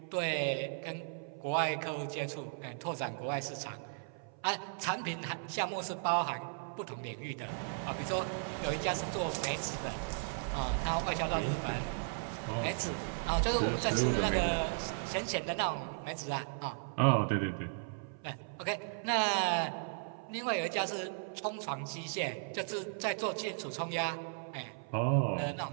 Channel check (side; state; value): left; silent; 54 dB below the other